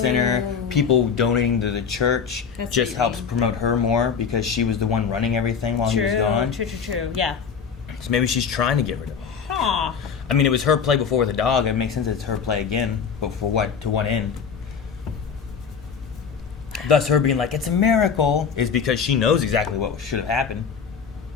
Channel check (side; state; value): right; quieter; 6.5 dB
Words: People donating to the church just helps promote her more because she was the one running everything while he was gone. True. Yeah. So maybe she's trying to get rid of him. Huh. I mean, it was her play before with the dog. It makes sense it's her play again. But for what? To what end? Thus, her being like, it's a miracle, is because she knows exactly what should have happened.